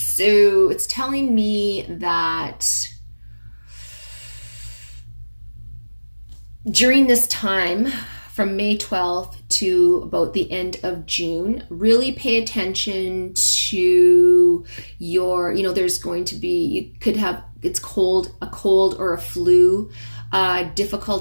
it's telling me that during this time, from May 12th to about the end of June, really pay attention to your, there's going to be, you could have, it's cold, a cold or a flu,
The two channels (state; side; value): inverted; both; correlation -1.00